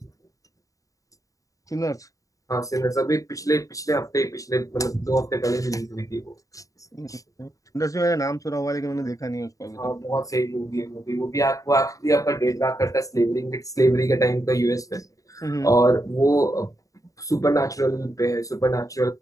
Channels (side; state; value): right; late; 0.16 ms